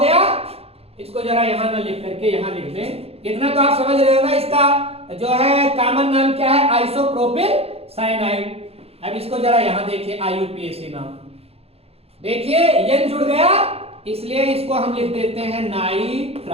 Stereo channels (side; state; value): left; late; 0.29 ms